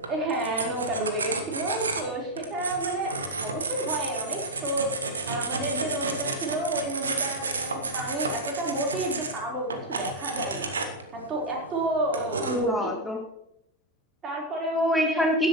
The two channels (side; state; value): both; normal; correlation -0.01